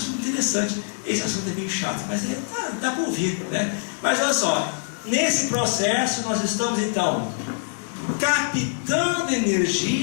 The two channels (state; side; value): silent; right; digital silence